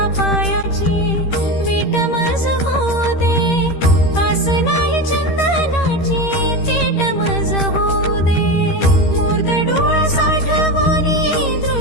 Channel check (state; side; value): late; right; 13 ms